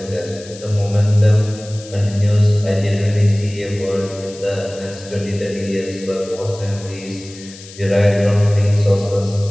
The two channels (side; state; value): left; noise; hiss, 18 dB below the sound